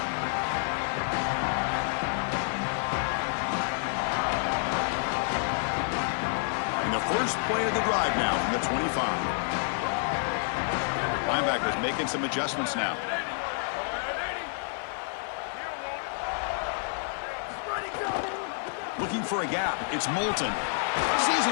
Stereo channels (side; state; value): right; silent; digital silence